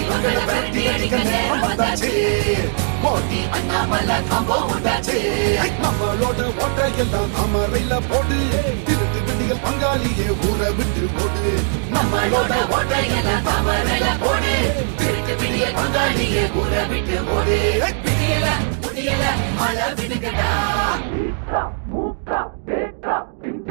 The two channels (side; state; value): left; silent; digital silence